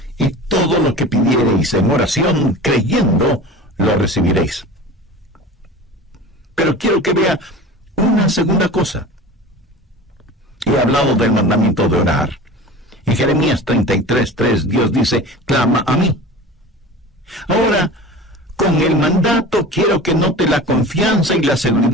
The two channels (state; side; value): normal; both; correlation 0.36